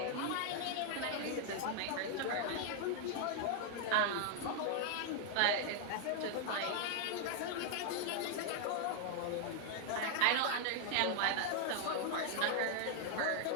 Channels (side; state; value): both; different; correlation 0.00